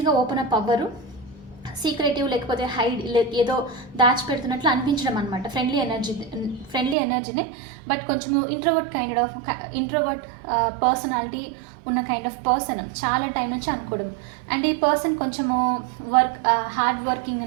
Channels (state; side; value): drops out; left; at 7.0 s